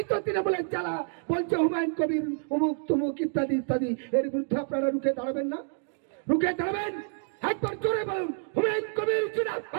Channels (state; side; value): silent; left; digital silence